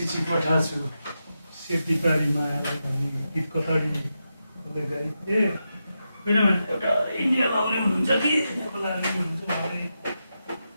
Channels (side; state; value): both; inverted; correlation -0.88